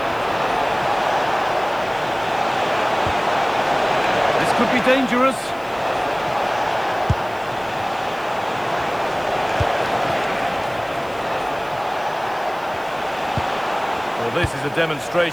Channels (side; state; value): right; noise; hiss, 25 dB below the sound